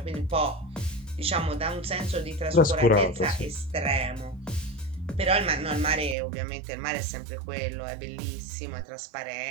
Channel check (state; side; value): drops out; left; at 6.2 s